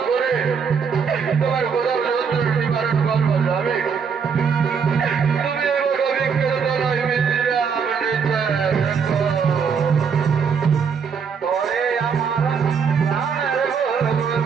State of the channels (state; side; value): quieter; left; 6.2 dB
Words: করে তোমার কোথাও যন্ত্রণা নিবারণ করবো যাবে। তুমি এবার অভিজ্ঞের দ্বারাই বিশ্রাম নিতে তোরে আমার প্রাণের